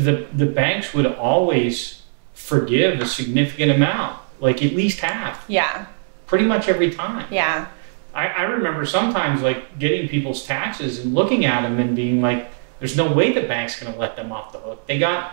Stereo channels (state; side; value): silent; left; digital silence